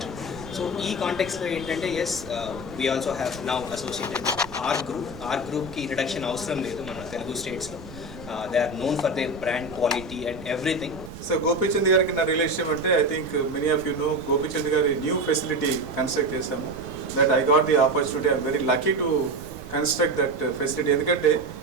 So ఈ కాంటెక్స్లో ఏంటంటే as we also have now associated are గ్రూప్కి introduction అవసరం లేదు మన తెలుగు స్టేట్స్లో. They are known for their brand quality and everything. So Gopichand గారికి నా రిలేషన్ అంటే I think many of you know Gopichand గారి న్యూ ఫెసిలిటీ కన్స్ట్రక్ట్ చేశాము. That I got the opportunity. I'm very lucky to construct that facility. ఎందుకంటే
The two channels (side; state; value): right; noise; rumble, 16 dB below the sound